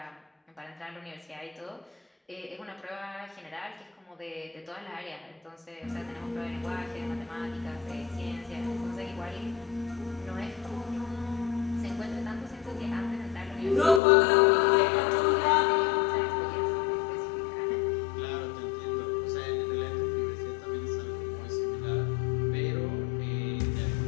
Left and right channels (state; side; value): drops out; right; at 14.0 s